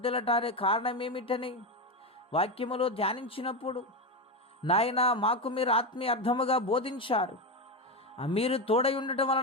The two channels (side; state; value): both; normal; correlation 0.14